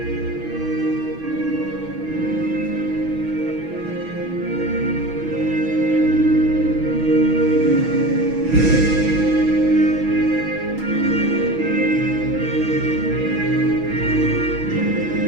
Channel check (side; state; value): left; late; 6.1 ms